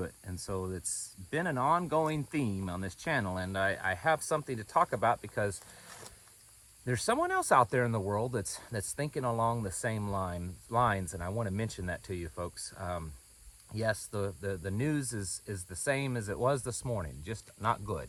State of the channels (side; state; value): both; identical; correlation 1.00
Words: it. And so it's been an ongoing theme on this channel, and I have something to talk about because there's someone else out there in the world that's thinking along the same lines, and I want to mention that to you, folks. Yes, the news is the same as it was this morning, just not